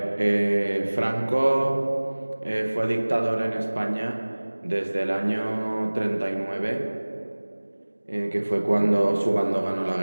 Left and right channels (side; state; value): both; inverted; correlation -1.00